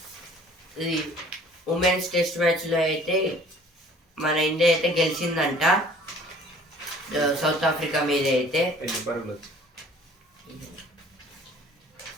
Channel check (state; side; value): normal; both; correlation 0.52